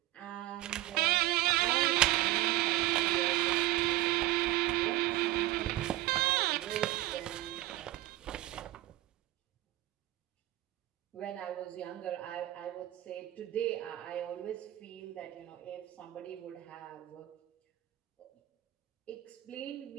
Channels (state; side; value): quieter; left; 16.0 dB